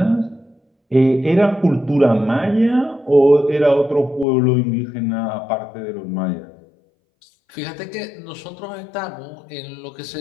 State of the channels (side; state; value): right; drops out; at 4.2 s